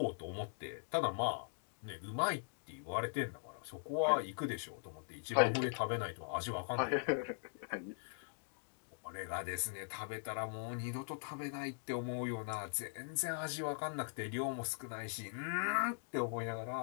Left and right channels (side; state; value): right; silent; digital silence